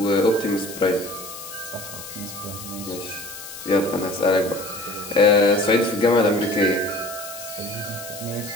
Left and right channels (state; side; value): noise; left; hiss, 12 dB below the sound